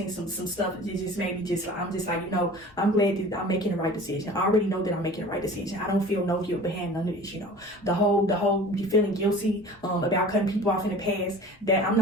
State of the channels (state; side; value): normal; both; correlation 0.42